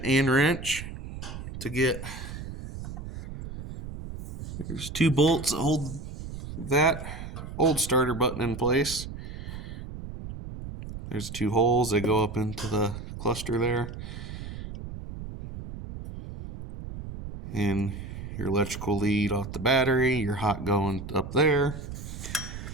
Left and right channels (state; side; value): noise; right; rumble, 9 dB below the sound